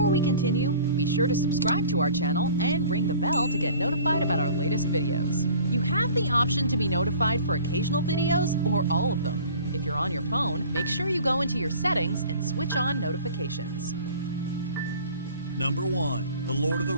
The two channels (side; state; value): both; inverted; correlation -0.46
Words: we continue, be sure to subscribe to our channel and ring the bell to get notified about our latest videos. You have the option to be notified for occasional videos or all of them. If you're on your phone, make sure you go into your settings and switch on notifications. Number 1, The Lord of the